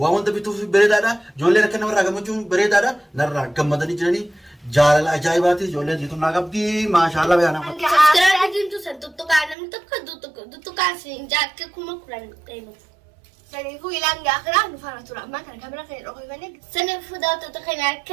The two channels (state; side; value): drops out; left; at 9.6 s